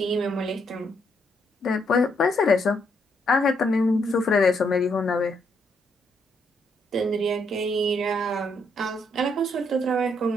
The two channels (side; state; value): both; normal; correlation 0.75